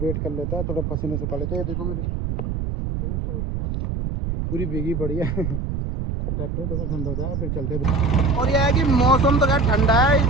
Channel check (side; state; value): right; noise; rumble, 3 dB below the sound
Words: कर लेते हैं, थोड़ा पसीने सुखा लेते हैं। देखो मेरे, देखो पूरी भीगी पड़ी है। ट्रैक्टर थोड़ा ठंडा हो जाए फिर चलते हैं। और यह है कि मौसम तो खैर ठंडा है इस